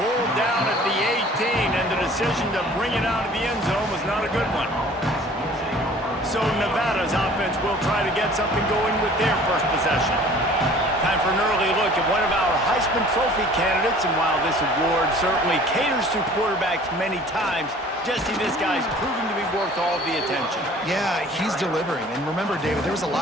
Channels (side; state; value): both; normal; correlation 0.49